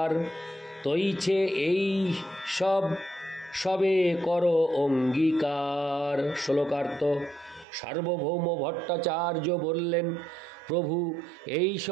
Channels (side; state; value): left; drops out; at 7.7 s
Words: তৈছে এই সবে করো অঙ্গীকার। শ্লোকার্থ। সার্বভৌম ভট্টাচার্য বললেন, প্রভু এই